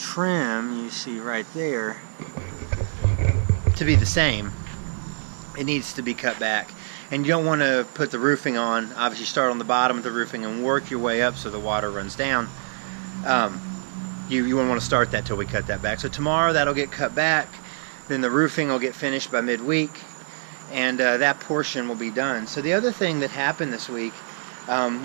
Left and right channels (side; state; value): left; silent; digital silence